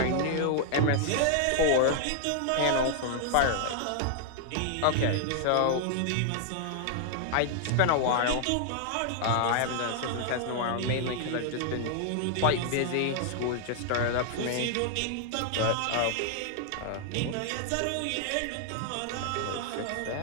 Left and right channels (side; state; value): both; different; correlation 0.00